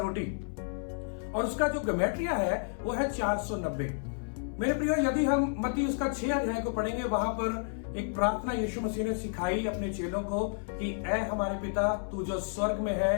और उसका जो ज्योमेट्रिया है वो है 490। मेरे प्रियो, यदि हम मत्ती उसका 6 अध्याय को पढ़ेंगे, वहां पर एक प्रार्थना यीशु मसीह ने सिखाई अपने चेलों को कि ऐ हमारे पिता, तू जो स्वर्ग में है,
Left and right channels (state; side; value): silent; right; 57 dB below the other